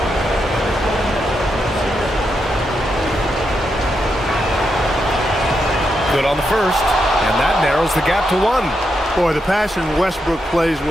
Good on the first, and that narrows the gap to 1. Boy, the passion Westbrook plays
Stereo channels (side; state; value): both; normal; correlation 0.83